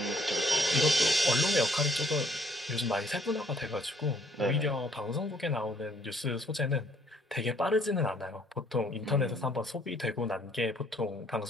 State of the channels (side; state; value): both; normal; correlation 0.63